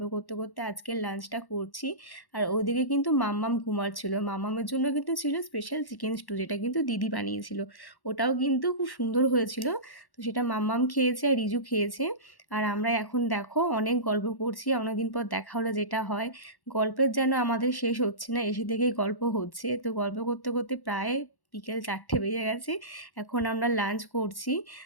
করতে করতে আজকের লাঞ্চটা করছি। আর ওদিকে কিন্তু মাম্মাম ঘুমাচ্ছিল। মাম্মামের জন্য কিন্তু ছিল স্পেশাল চিকেন স্টু, যেটা কিন্তু দিদি বানিয়েছিল। ওটাও কিন্তু খুব সুন্দর হয়েছিল। তো সেটা মাম্মাম খেয়েছে আর রিজু খেয়েছে। আর আমরা এখন দেখো অনেক গল্প করছি। অনেকদিন পর দেখা হলে যেটা হয়, গল্পের যেন আমাদের শেষ হচ্ছে না, এসে থেকেই গল্প হচ্ছে। তো গল্প করতে করতে প্রায় বিকেল 4টে বেজে গেছে। এখন আমরা লাঞ্চ করছি।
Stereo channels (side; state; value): right; late; 1.1 ms